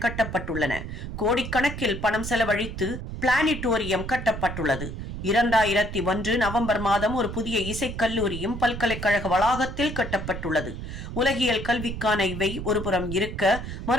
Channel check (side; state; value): right; noise; rumble, 8 dB below the sound